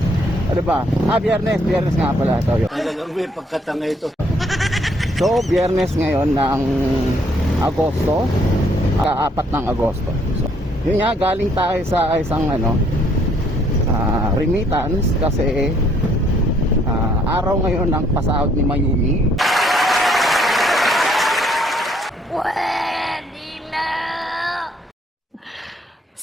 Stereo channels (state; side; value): normal; both; correlation 0.66